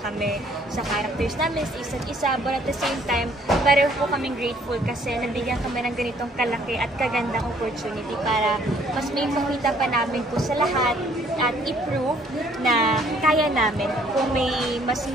sa characters namin, sa isa't isa. But at the same time, pareho po kaming grateful kasi nabigyan kami ng ganitong kalaki at kagandang opportunity para mas may makita pa namin po sa lahat at i-prove na kaya namin kung may mas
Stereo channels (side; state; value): both; normal; correlation 0.62